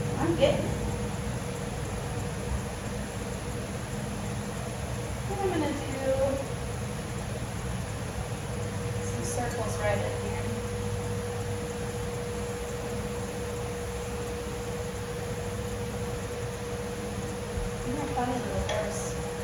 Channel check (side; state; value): both; identical; correlation 1.00